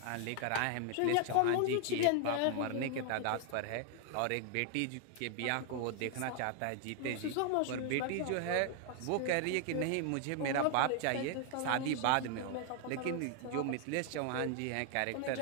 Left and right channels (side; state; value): both; different; correlation 0.00